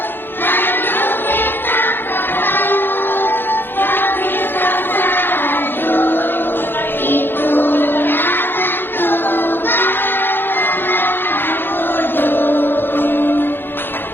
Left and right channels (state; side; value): late; right; 0.10 ms